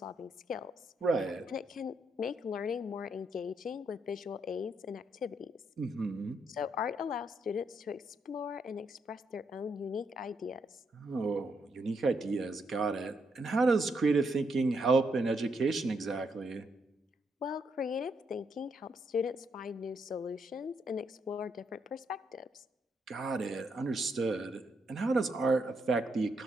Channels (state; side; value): normal; both; correlation 0.77